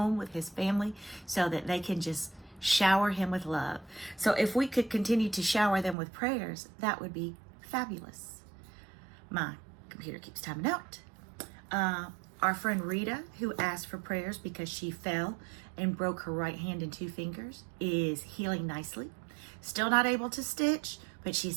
with his family so that they can just shower him with love. So if we could continue to shower them with prayers, that would be fabulous. My computer keeps timing out. Our friend Rita, who asked for prayers because she fell and broke her right hand and 2 fingers, is healing nicely. Still not able to stitch, but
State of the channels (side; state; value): left; drops out; at 6.0 s